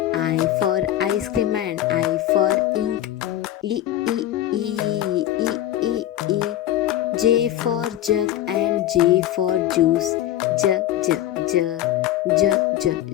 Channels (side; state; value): right; quieter; 12.8 dB